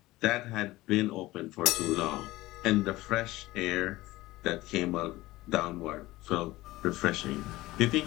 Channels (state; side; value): quieter; right; 18.5 dB